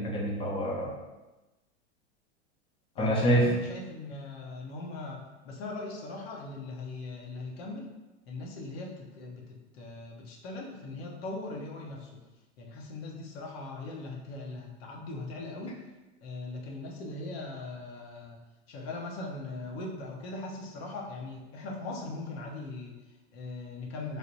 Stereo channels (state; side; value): normal; both; correlation 0.32